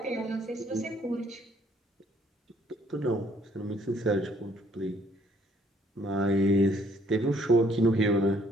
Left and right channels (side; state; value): both; normal; correlation 0.64